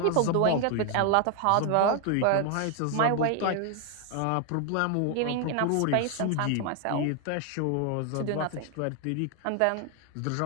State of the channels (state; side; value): different; both; correlation 0.00